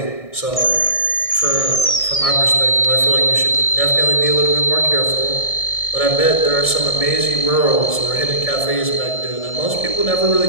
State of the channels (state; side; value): late; right; 1.6 ms